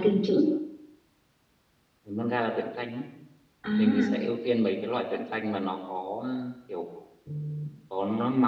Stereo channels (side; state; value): both; identical; correlation 1.00